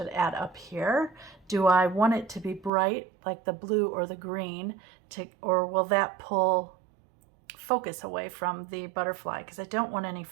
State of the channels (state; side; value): drops out; left; at 2.7 s